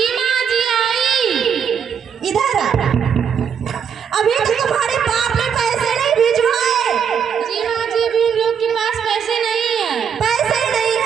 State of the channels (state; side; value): quieter; left; 7.4 dB